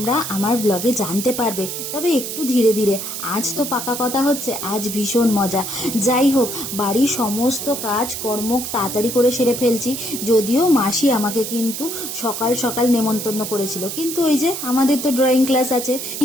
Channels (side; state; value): right; noise; hiss, 6 dB below the sound